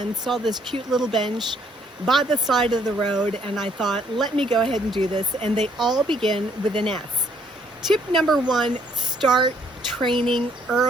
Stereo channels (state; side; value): normal; both; correlation 0.66